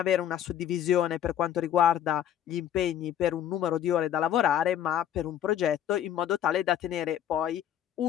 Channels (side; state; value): right; quieter; 10.4 dB